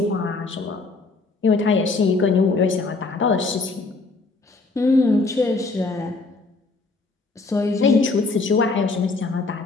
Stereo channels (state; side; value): quieter; right; 3.7 dB